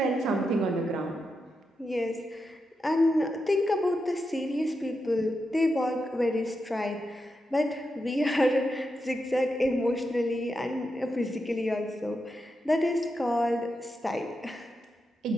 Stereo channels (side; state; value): both; normal; correlation 0.87